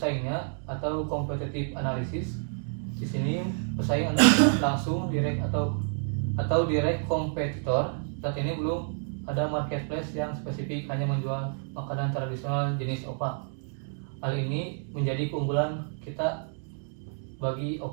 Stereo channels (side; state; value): left; silent; 58 dB below the other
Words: atau competitive analysis. Di sini pesaing langsung, direct atau direct kompetitor. Saat ini belum ada marketplace yang spesifik hanya menjual makanan tradisional jenis opak. Hal ini menjadi keunggulan kita bagi